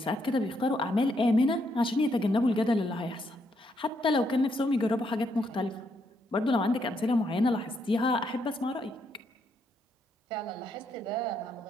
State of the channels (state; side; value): normal; both; correlation 0.76